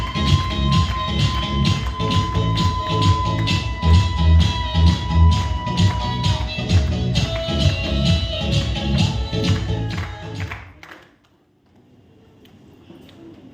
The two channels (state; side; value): identical; both; correlation 1.00